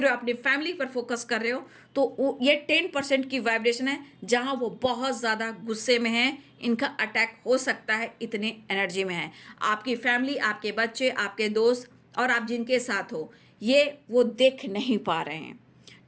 अपनी फैमिली पर फोकस कर रहे हो, तो ये 10% की वाइब्रेशन है जहां वो बहुत ज़्यादा गुस्से में हैं, इनका अटैक हो सकता है, इतने एनर्जी में है। आपकी फैमिली, आपके बच्चे, आपके दोस्त और आप जिनके साथ हो, ये वो देख नहीं पा रहे हैं,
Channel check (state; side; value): identical; both; correlation 1.00